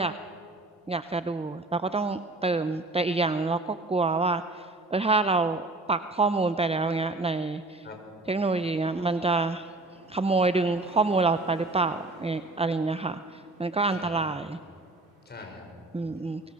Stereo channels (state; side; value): quieter; left; 3.0 dB